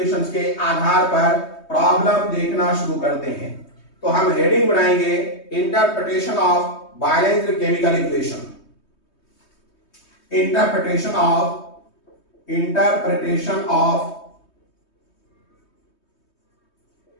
के आधार पर प्रॉब्लम देखना शुरू करते हैं। तो हम हेडिंग बनाएंगे interpretation of balanced chemical equation. Interpretation of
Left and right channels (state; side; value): late; right; 3.2 ms